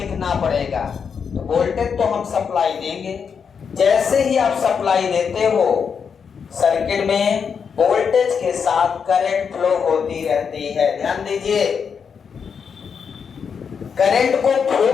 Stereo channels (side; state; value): right; quieter; 6.5 dB